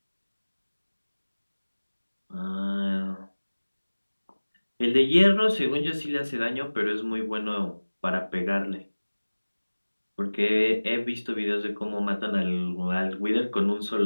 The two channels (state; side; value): inverted; both; correlation -1.00